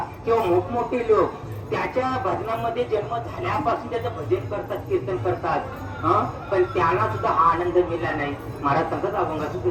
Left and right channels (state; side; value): identical; both; correlation 1.00